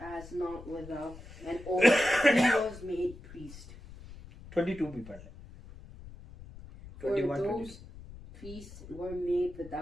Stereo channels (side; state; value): left; noise; rumble, 16 dB below the sound